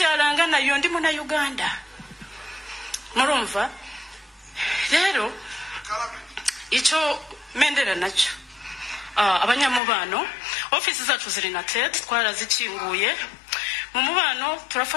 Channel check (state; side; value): drops out; right; at 9.8 s